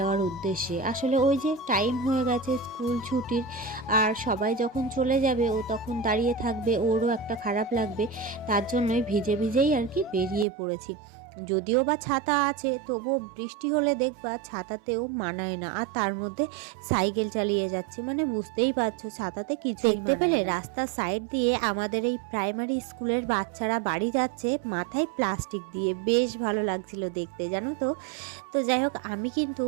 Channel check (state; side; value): drops out; left; at 10.5 s